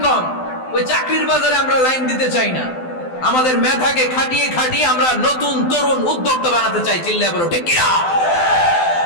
কম, ওই চাকরির বাজারে আমরা লাইন দিতে চাই না। আমাদের মেধাকে খাটিয়ে খাটিয়ে আমরা নতুন তরুণ উদ্যোক্তা বানাতে চাই। চিল্লায় বলো ঠিক কিনা?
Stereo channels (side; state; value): right; late; 12 ms